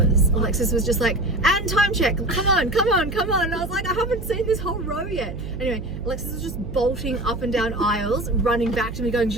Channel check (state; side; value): noise; right; hum, 9 dB below the sound